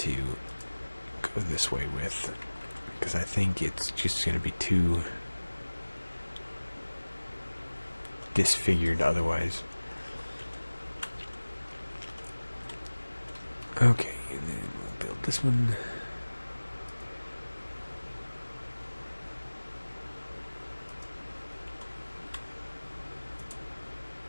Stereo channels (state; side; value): inverted; both; correlation -1.00